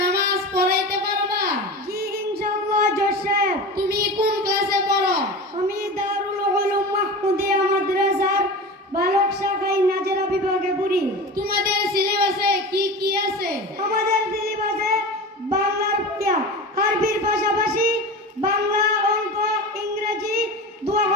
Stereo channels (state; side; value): normal; both; correlation 0.30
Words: নামাজ পড়াইতে পারবা? জি ইনশাআল্লাহ জোসেফ। তুমি কোন ক্লাসে পড়ো? আমি দারুল উলুম মাহমুদিয়া মাদ্রাসার বালক শাখায় নাজেরা বিভাগে পড়ি। তোমাদের সিলেবাসে কি কি আছে? আমাদের সিলেবাসে বাংলার পড়া, আরবির পাশাপাশি বাংলা, অঙ্ক, ইংরেজি,